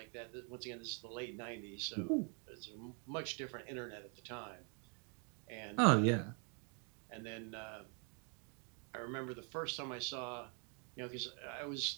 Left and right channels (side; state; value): left; quieter; 37.9 dB